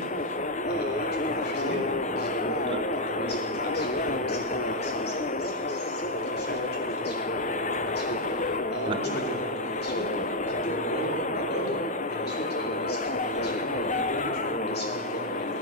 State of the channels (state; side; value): normal; both; correlation 0.01